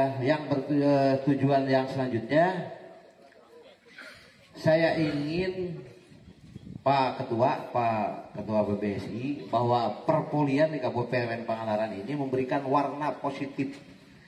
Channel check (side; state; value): both; identical; correlation 1.00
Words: yang bertujuan yang selanjutnya, saya ingin Pak Ketua BBSI bahwa perpolian di Kabupaten Pangandaran ini memberikan warna positif